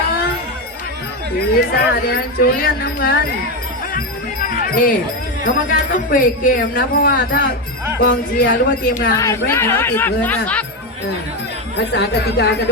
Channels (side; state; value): both; normal; correlation 0.11